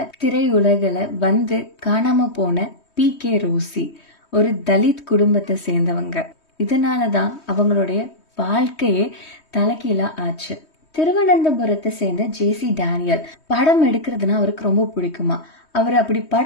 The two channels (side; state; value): right; late; 3.2 ms